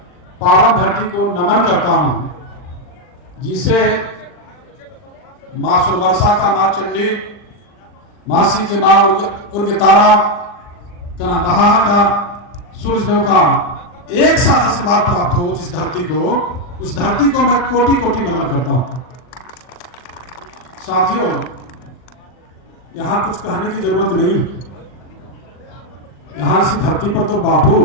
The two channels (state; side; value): late; right; 40 ms